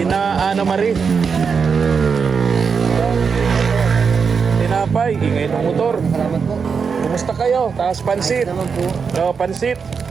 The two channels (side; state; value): left; quieter; 5.8 dB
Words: Ana Marie. Tinapay, ingay ng motor. Salamat po. Kumusta kayo? Taas pansit. Naman po. Oh, pansit.